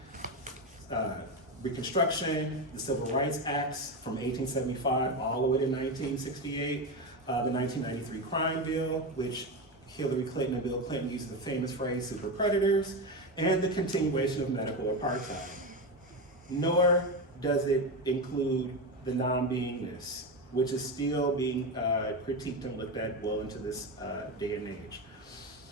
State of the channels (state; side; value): normal; both; correlation 0.16